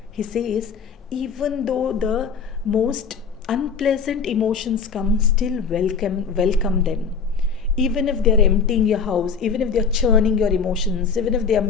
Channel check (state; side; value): quieter; right; 5.8 dB